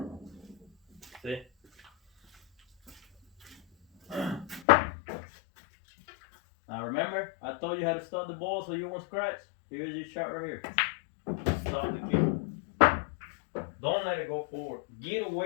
See? Now remember, I told you how to stop the ball so you won't scratch. Here's your shot right here. Stop the cue. Don't let it go forward. Get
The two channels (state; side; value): drops out; right; at 4.7 s